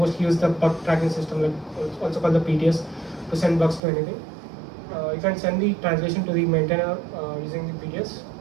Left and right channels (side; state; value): left; drops out; at 3.8 s